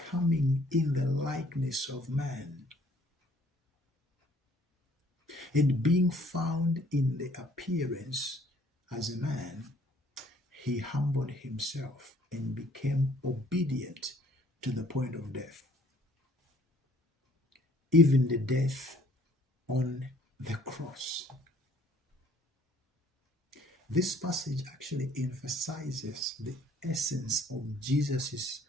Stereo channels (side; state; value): both; normal; correlation 0.59